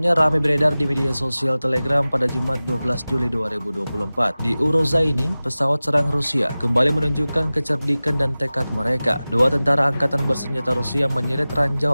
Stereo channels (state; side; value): inverted; both; correlation -0.97